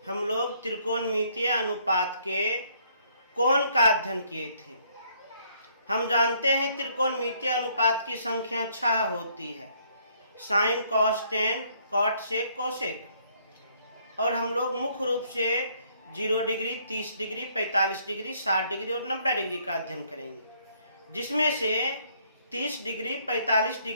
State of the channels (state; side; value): inverted; both; correlation -0.66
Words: हम लोग त्रिकोणमितीय अनुपात के कोण का अध्ययन किए थे। हम जानते हैं त्रिकोणमितीय अनुपात की संख्या 6 होती है, sine cos tan cot sec cosec. और हम लोग मुख्य रूप से 0 डिग्री, 30 डिग्री, 45 डिग्री, 60 डिग्री और 90 डिग्री का अध्ययन करेंगे, जिसमें से 30 डिग्री, 45